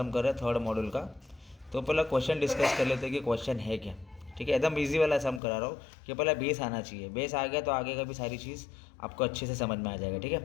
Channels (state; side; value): drops out; right; at 5.4 s